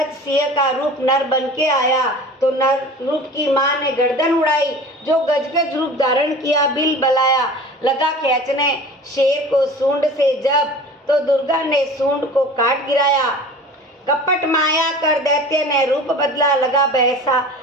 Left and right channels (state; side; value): normal; both; correlation 0.39